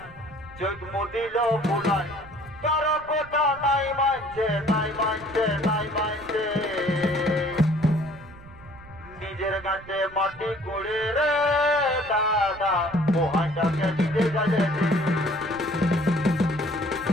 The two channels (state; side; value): noise; right; rumble, 20 dB below the sound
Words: চোখ মুদিল ফুলাই কারো কথা নাই মানছে নাই মানছে নাই মানছে নিজের গাছে মাটি কুড়ে রে দাদা মোহাটাকে দিতে গেলে